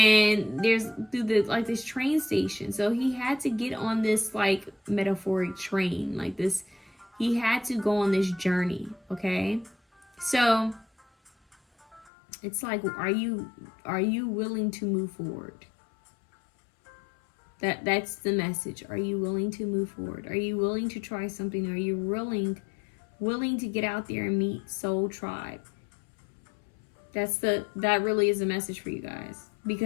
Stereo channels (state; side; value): drops out; right; at 12.1 s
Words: there's through this train station. So he had to get on this like metaphoric train, like this. He had to go on this journey. Okay, so it's like, are you willing to move forward? That's the message. Are you willing to move forward? Are you willing to try something? Are you willing to get out there and meet Soul Tribe? That really is a message for you guys,